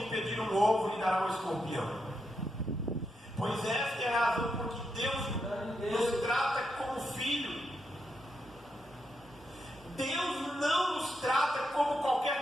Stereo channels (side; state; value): both; normal; correlation 0.84